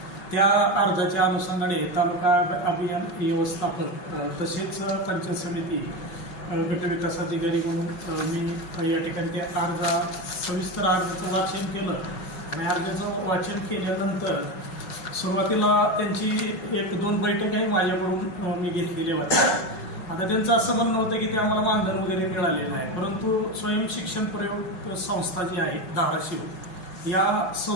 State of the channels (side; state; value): right; late; 5.7 ms